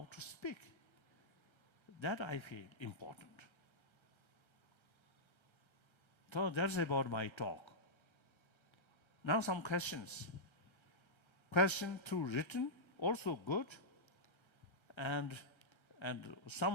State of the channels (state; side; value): late; right; 1.3 ms